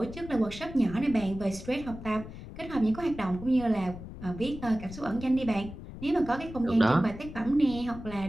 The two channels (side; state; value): left; noise; rumble, 12 dB below the sound